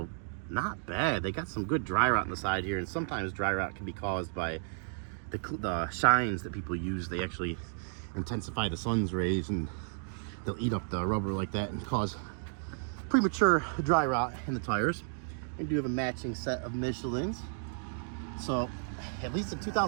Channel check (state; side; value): silent; left; digital silence